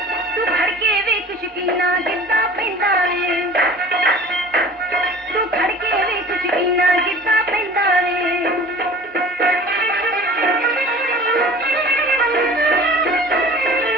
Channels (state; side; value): normal; both; correlation 0.43